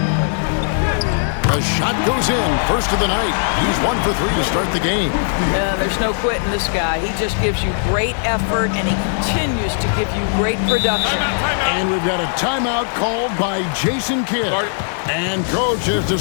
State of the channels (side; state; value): right; silent; digital silence